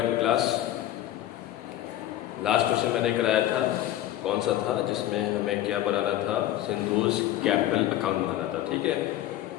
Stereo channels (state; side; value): quieter; right; 13.5 dB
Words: क्लास। लास्ट क्वेश्चन मैंने कराया था, कौन सा था, जिसमें हमें क्या बनाना था, सिंधुज कैपिटल अकाउंट बनाना था, ठीक है।